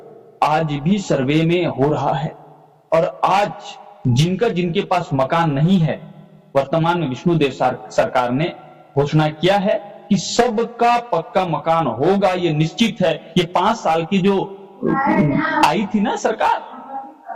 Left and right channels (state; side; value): identical; both; correlation 1.00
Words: आज भी सर्वे में हो रहा है। और आज जिनके पास मकान नहीं है, वर्तमान में विष्णुदेव सरकार ने घोषणा किया है कि सबका पक्का मकान होगा, ये निश्चित है। ये 5 साल की जो आई थी ना सरकार,